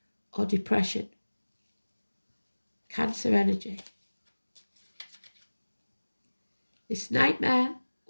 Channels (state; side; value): inverted; both; correlation -1.00